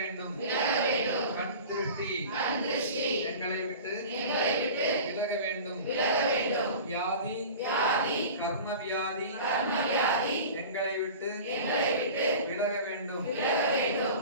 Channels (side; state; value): both; inverted; correlation -0.37